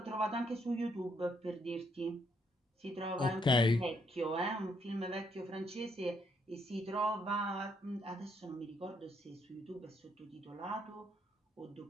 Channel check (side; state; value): both; normal; correlation 0.73